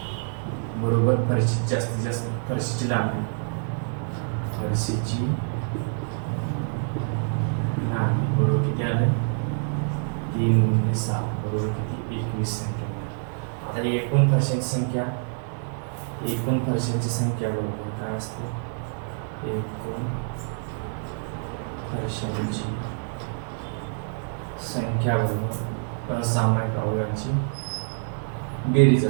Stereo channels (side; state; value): left; silent; 58 dB below the other